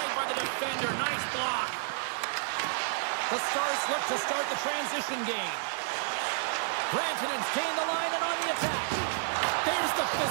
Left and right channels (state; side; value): silent; left; digital silence